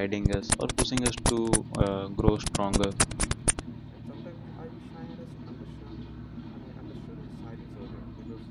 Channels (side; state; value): both; identical; correlation 1.00